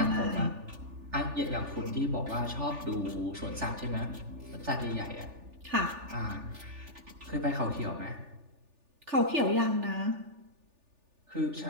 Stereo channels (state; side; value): late; left; 3.4 ms